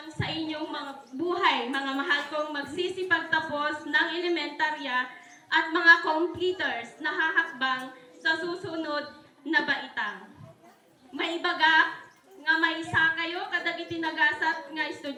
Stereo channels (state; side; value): identical; both; correlation 1.00